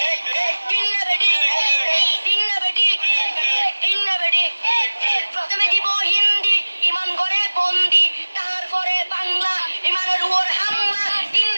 দিন না বেডি, দিন না বেডি, দিন না বেডি। প্রথমে দিব হিন্দি, ইমান করে বন্দি, তারপরে বাংলা, ইমানের উপর হামলা, দিন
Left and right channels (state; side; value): inverted; both; correlation -1.00